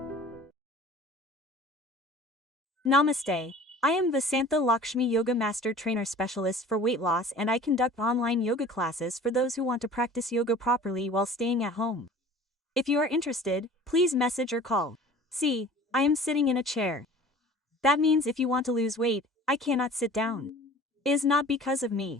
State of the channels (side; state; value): both; normal; correlation 0.44